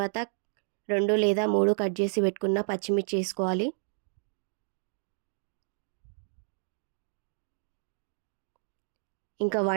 2 లేదా 3 కట్ చేసి పెట్టుకున్న పచ్చిమిర్చి వేసుకోవాలి. ఇంకా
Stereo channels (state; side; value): silent; left; digital silence